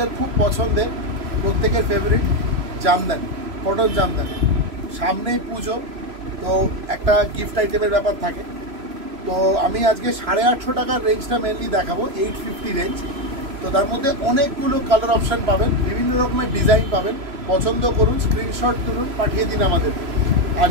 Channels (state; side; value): late; left; 3.0 ms